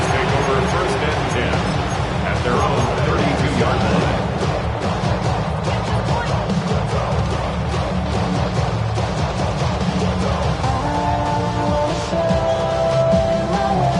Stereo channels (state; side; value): identical; both; correlation 1.00